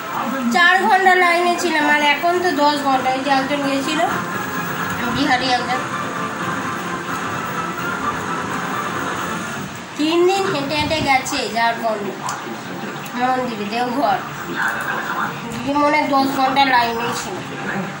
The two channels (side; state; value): both; identical; correlation 1.00